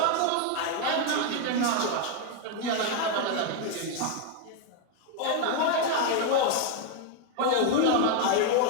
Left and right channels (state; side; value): different; both; correlation 0.01